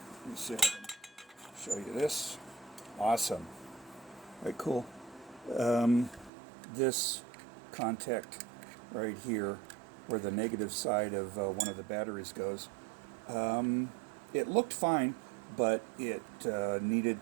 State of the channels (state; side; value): drops out; left; at 6.3 s